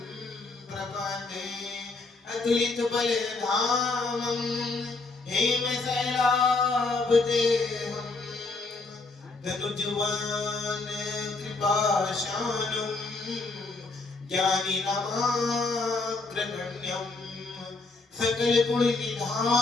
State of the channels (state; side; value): quieter; right; 3.6 dB